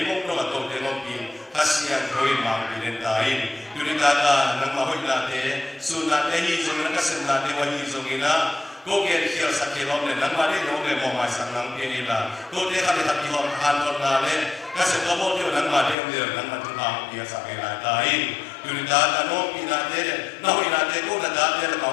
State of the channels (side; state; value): right; drops out; at 16.0 s